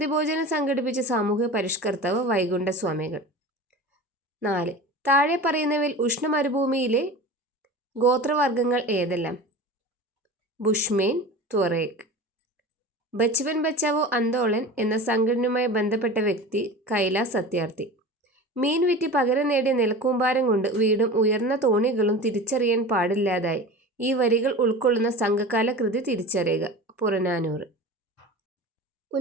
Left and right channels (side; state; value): both; normal; correlation 0.33